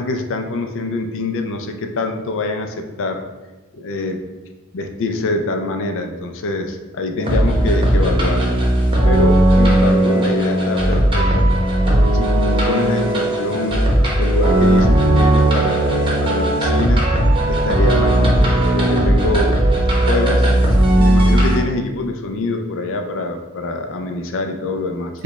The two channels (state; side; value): normal; both; correlation 0.69